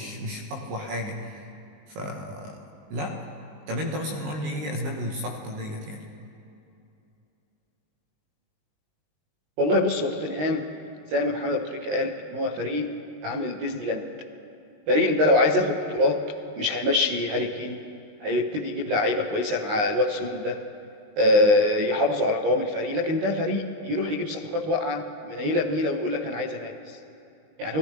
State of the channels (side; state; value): left; late; 19 ms